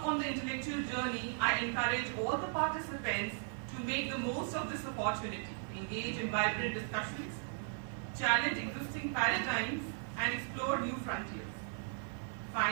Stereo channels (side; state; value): left; silent; 53 dB below the other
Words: on the intellectual journey, I encourage all the participants to make the most of this opportunity, engage in vibrant discussions, challenge existing paradigms, and explore new frontiers.